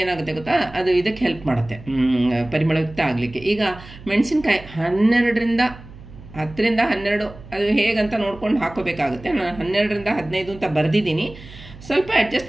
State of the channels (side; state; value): right; noise; hum, 18 dB below the sound